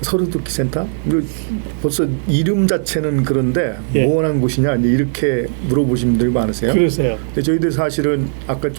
서로돕기 센터? 벌써 이름 자체는 그런데 예. 무언한 곳이냐 이렇게 물어보신 분들이 많으세요. 그러세요. 근데 저희들 사실은 아까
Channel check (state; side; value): silent; left; digital silence